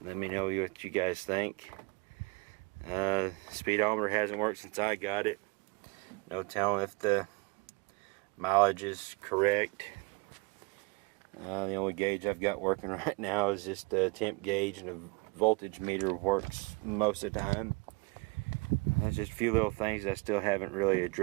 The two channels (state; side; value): quieter; left; 28.3 dB